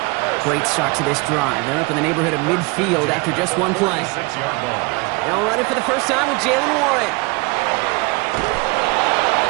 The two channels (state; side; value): quieter; left; 26.6 dB